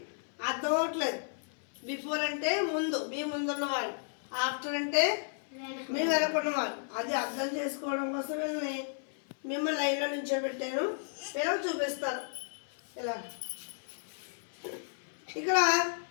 అర్థం అవట్లేదు. బిఫోర్ అంటే ముందు, మీ ముందున్నవాళ్ళు. ఆఫ్టర్ అంటే మీ వెనకున్నవాళ్ళు. అది అర్థం చేసుకోవడం కోసం వీళ్ళని మిమ్మల్ని లైన్లో నిల్చోబెట్టాను. వీళ్ళకి చూపిస్తాను. ఇలా ఇక్కడ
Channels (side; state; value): right; silent; 56 dB below the other